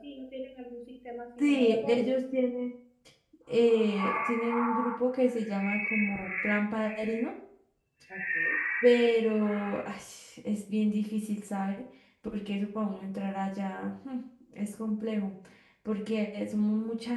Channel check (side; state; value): both; identical; correlation 1.00